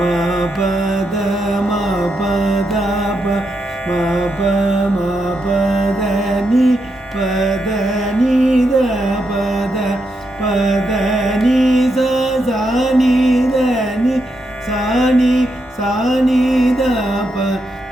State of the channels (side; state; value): both; normal; correlation 0.83